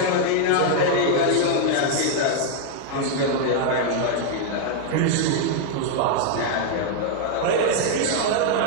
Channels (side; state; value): both; different; correlation 0.00